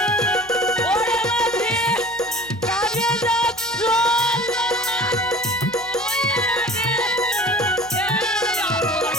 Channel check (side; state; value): left; noise; hum, 24 dB below the sound